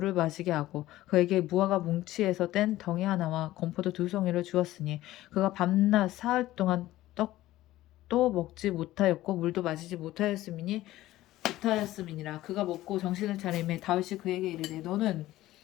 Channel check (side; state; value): right; quieter; 15.8 dB